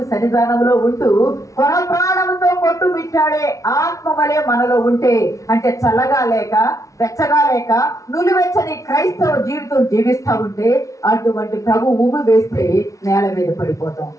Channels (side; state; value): right; late; 0.16 ms